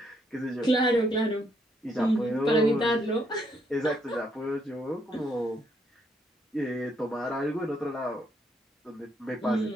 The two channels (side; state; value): both; normal; correlation 0.73